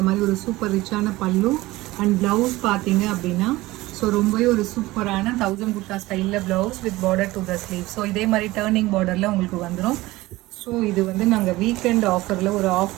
மாதிரி ஒரு சூப்பர் ரிச்சான பல்லு. அண்ட் ப்ளவுஸ் பார்த்தீங்க அப்படின்னா ஸோ ரொம்பவே ஒரு சூப்பரான 1000 குர்தா ஸ்டைலில் blouse with border to the sleeve. So இதே மாதிரி டேர்னிங் பார்டரில் உங்களுக்கு வந்துடும். ஸோ இது வந்து நாங்கள் வீக்கெண்ட் ஆஃபரில் ஒரு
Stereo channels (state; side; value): quieter; left; 19.0 dB